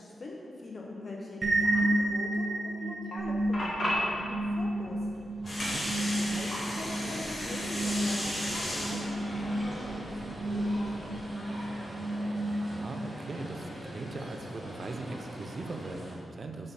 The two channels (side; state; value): both; normal; correlation 0.88